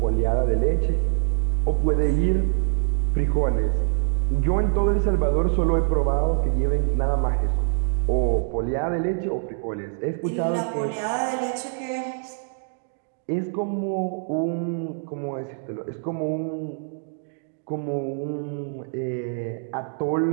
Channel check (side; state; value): left; silent; digital silence